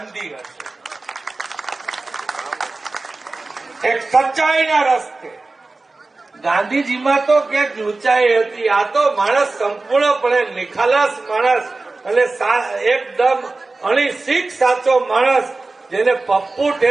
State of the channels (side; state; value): left; quieter; 3.4 dB